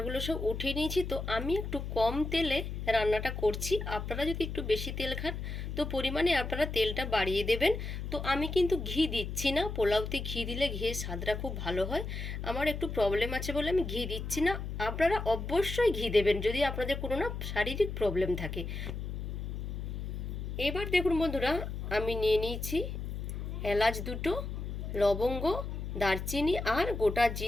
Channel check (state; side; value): noise; left; hum, 5 dB below the sound